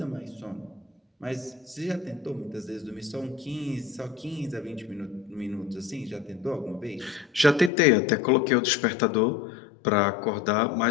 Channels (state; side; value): drops out; right; at 7.7 s